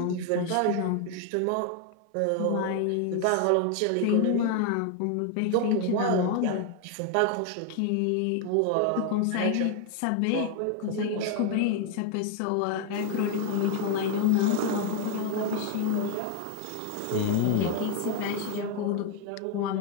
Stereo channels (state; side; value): different; both; correlation 0.01